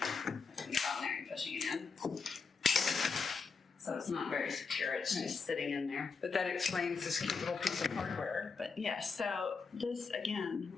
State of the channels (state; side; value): quieter; right; 5.0 dB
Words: it on there and pushing it in. So it's not very secure, it's just sitting in there. But that explains this cute little piece of hardware. But yeah, so this, again,